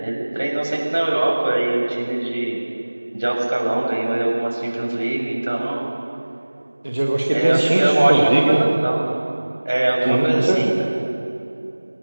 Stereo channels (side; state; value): both; inverted; correlation -1.00